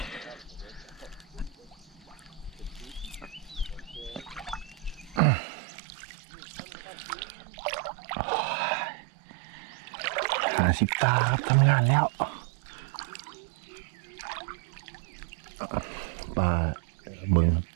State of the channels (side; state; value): left; drops out; at 5.2 s